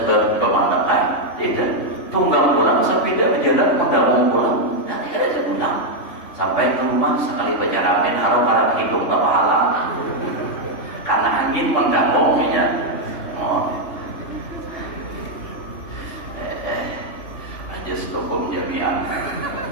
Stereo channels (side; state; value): right; late; 3.5 ms